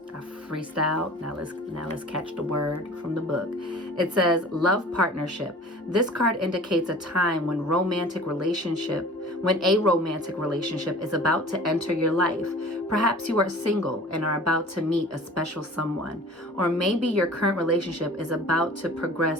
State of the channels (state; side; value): normal; both; correlation 0.44